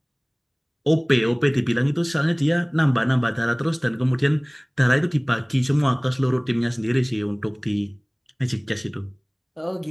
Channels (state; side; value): identical; both; correlation 1.00